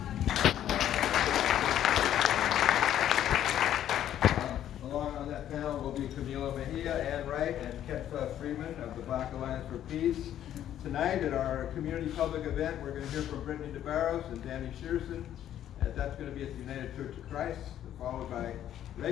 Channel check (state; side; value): quieter; right; 11.2 dB